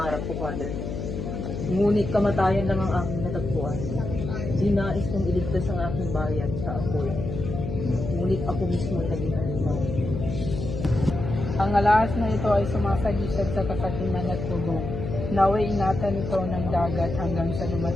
ko, Father. Ngunit kamatayan lang ang aking natagpuan. Di nais kong iligtas ang aking bayan sa apoy. Ngunit ako mismo ay naging halimaw. Ang alahas na ito ay sumasagisag sa kasakiman at tugo. Naway ingatan ito ng dagat hanggang sa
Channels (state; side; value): noise; left; hum, 5 dB below the sound